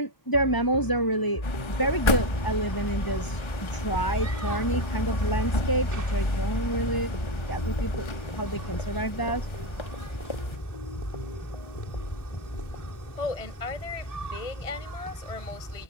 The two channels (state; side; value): late; right; 1.3 ms